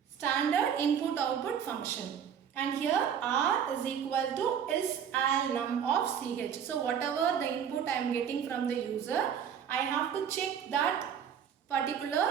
standard input output function. And here r is equal to ALNUM of ch. So whatever the input I am getting from the user, I have to check that particular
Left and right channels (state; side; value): quieter; left; 8.2 dB